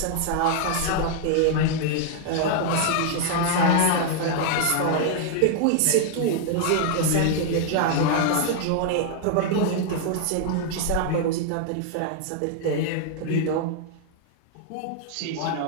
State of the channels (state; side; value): different; both; correlation 0.00